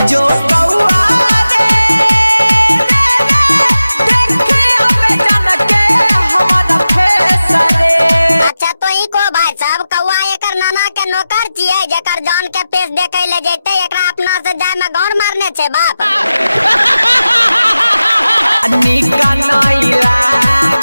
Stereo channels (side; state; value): both; inverted; correlation -0.93